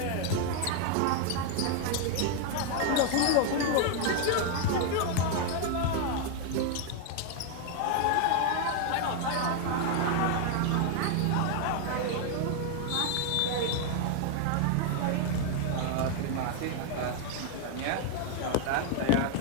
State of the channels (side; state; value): both; different; correlation 0.00